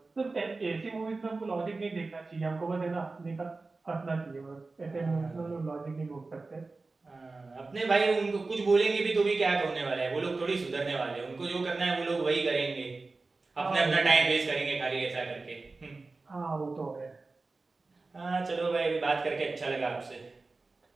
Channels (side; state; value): left; quieter; 3.6 dB